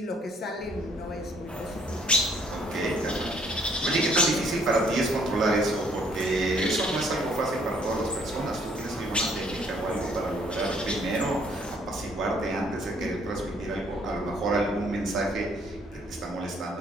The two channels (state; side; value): normal; both; correlation 0.64